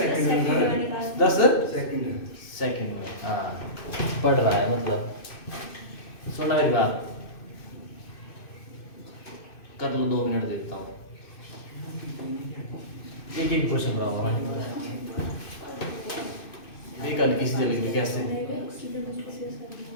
10 सेकंड सेकंड में, हाँ पढ़ रहा है मतलब। सुनना मेरी बात, कर लो 2 मिनट देता हूँ, एक एक क्वेश्चन कराऊंगा मैं। एक हल्की सी जलेगी कैसे।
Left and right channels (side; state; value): right; late; 2.6 ms